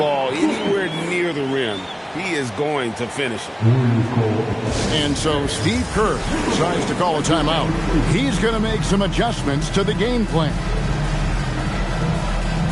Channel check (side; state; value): both; identical; correlation 1.00